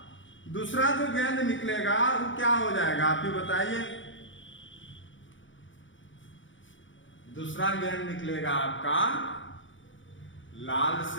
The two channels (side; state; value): right; late; 0.56 ms